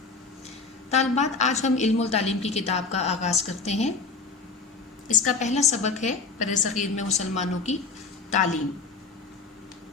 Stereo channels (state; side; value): quieter; right; 4.4 dB